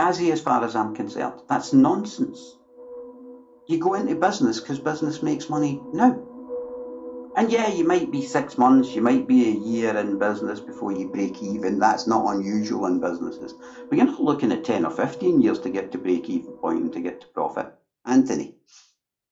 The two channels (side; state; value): both; identical; correlation 1.00